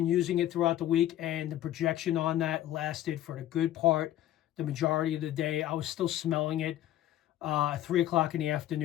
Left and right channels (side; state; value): right; quieter; 13.1 dB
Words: using it throughout the week, and the projection on that lasted for the good part, the majority of the day. I was still smelling it 3 o'clock in the